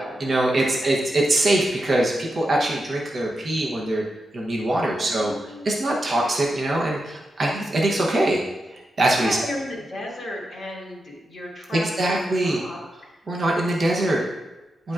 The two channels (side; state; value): both; normal; correlation 0.88